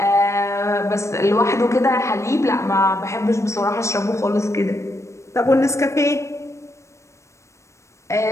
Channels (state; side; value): late; right; 0.14 ms